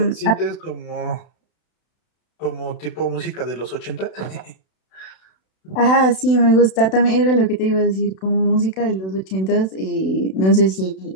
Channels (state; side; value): late; right; 32 ms